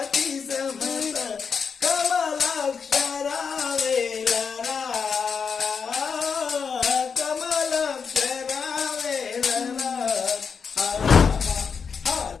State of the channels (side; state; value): right; quieter; 6.0 dB